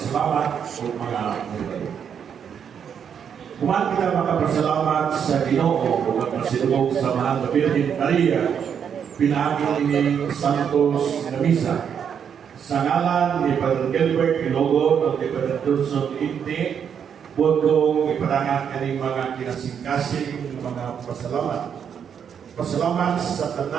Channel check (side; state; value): left; quieter; 7.8 dB